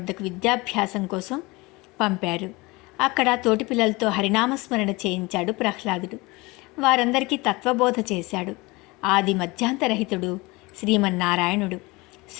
విద్యాభ్యాసం కోసం పంపారు. అక్కడ తోటి పిల్లలతో హరినామస్మరణ చేయించాడు ప్రహ్లాదుడు. వారందరికీ తత్వబోధ చేశాడు. ఆది మధ్యాంతరహితుడు శ్రీమన్నారాయణుడు,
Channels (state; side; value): quieter; right; 23.5 dB